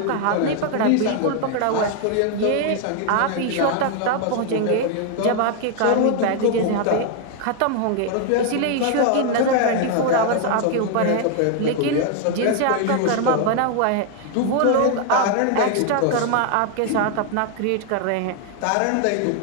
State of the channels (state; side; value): different; both; correlation 0.00